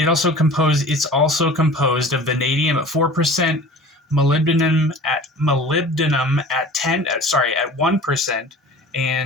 composed of vanadium at 4%, molybdenum at 1%,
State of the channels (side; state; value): both; normal; correlation 0.41